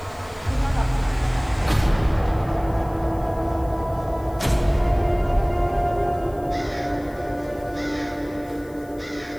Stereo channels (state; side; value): noise; left; hiss, 26 dB below the sound